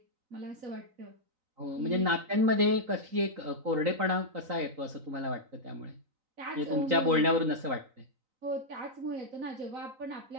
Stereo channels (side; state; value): left; late; 3.9 ms